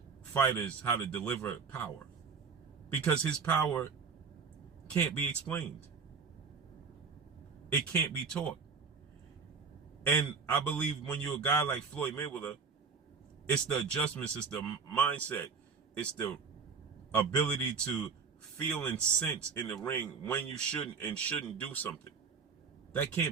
fighters how to deliver power, because his power can't be explained. It can't be taught. And I believe when you're a guy like Floyd Mayweather, it's the adjustments, it's the mindset, it's the ability to feel and sense in the ring when you shouldn't and shouldn't do something. That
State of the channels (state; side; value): quieter; left; 5.4 dB